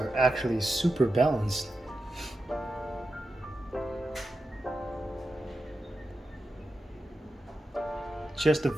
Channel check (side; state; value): both; normal; correlation 0.90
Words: actually super balanced. Just a